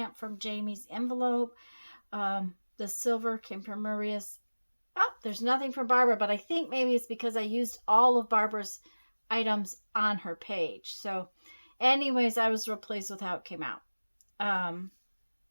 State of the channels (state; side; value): inverted; both; correlation -1.00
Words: from Jamie's envelope. The silver came from Maria's. Oh, there's nothing from Barbara, but I think maybe it's because I used all of Barbara's items on her page. So anyways, I was real pleased with how it came out.